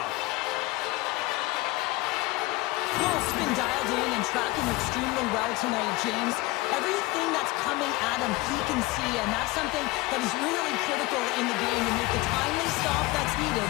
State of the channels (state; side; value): quieter; right; 20.7 dB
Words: Wolf's been dialed in and tracking extremely well tonight, James. Everything that's coming at him, he can see, and that's something that is really critical in the game to make the timely stop that's needed